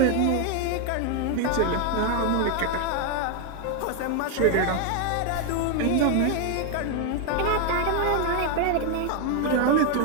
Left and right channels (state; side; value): different; both; correlation 0.01